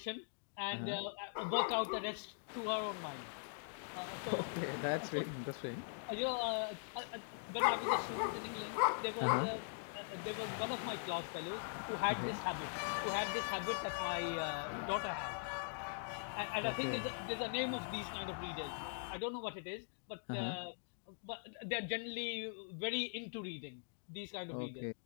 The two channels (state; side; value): silent; right; digital silence